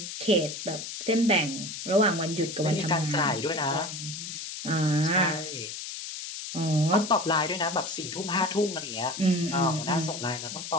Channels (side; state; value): left; noise; hiss, 8 dB below the sound